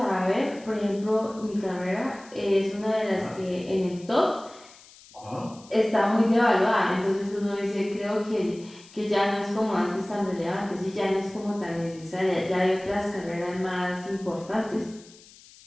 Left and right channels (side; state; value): left; noise; hiss, 23 dB below the sound